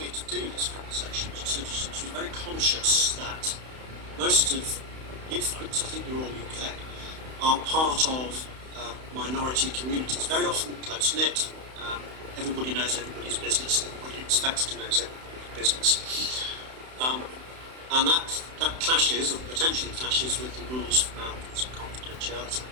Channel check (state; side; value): late; left; 31 ms